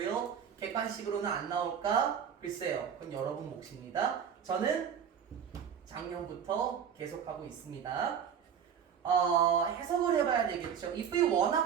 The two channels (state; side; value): quieter; left; 8.0 dB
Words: 객관식으로는 안 나올까? 글쎄요. 그건 여러분 몫입니다. 저는 작년부터 계속하고 있습니다. 해석을 해봐야 되겠죠. if you wanna